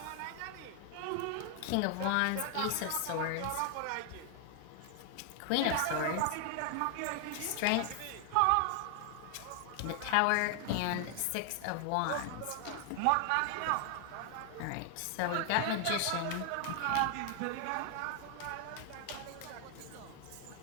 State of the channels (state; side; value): different; both; correlation 0.00